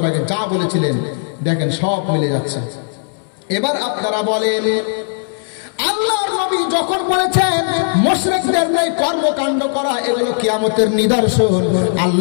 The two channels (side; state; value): right; silent; digital silence